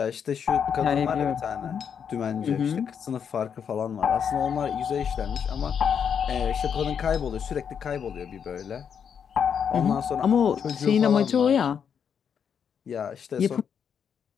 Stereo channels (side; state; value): right; quieter; 7.5 dB